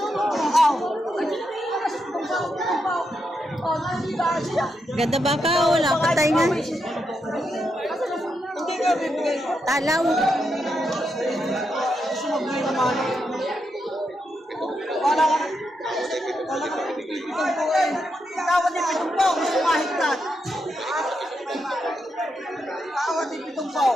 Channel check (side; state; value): both; normal; correlation 0.83